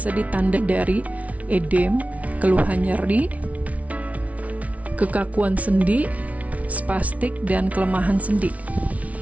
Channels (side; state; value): left; late; 0.067 ms